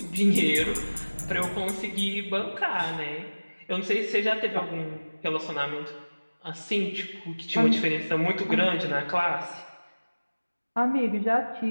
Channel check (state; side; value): inverted; both; correlation -1.00